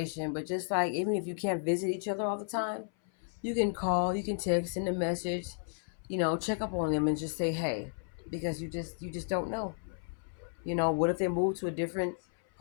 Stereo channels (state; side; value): silent; right; 56 dB below the other